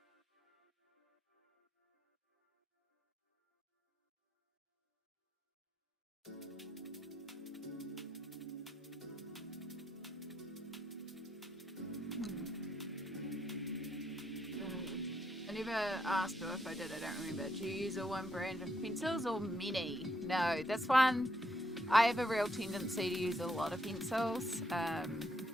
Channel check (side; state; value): both; normal; correlation 0.77